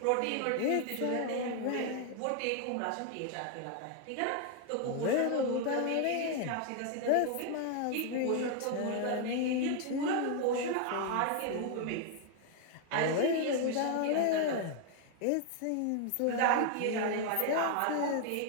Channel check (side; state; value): both; different; correlation 0.00